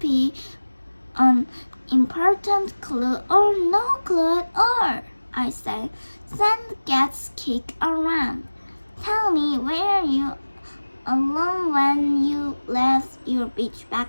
be an important clue or no clue at all, I said. Sand gets kicked around. Tell me, were you alone when you left your beach bag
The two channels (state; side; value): inverted; both; correlation -1.00